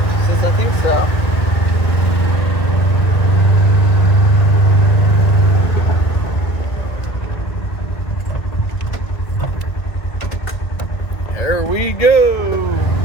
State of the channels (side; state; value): right; late; 1.9 ms